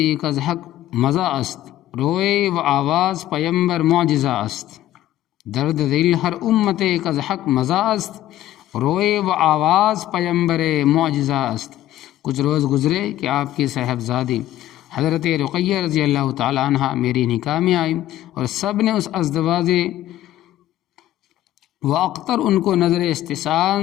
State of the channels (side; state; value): right; quieter; 13.6 dB